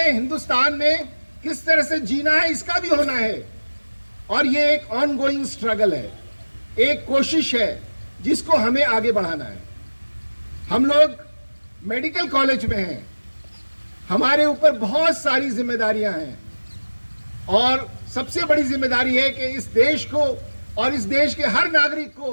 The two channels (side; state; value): both; inverted; correlation -1.00